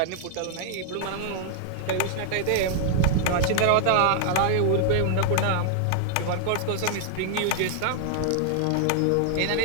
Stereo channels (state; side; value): different; both; correlation 0.00